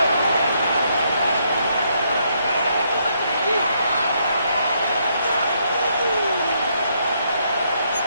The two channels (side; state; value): both; inverted; correlation -0.74